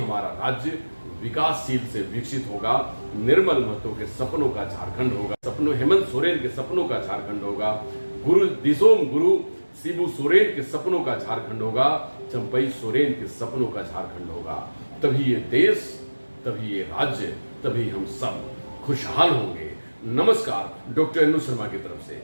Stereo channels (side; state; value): both; inverted; correlation -1.00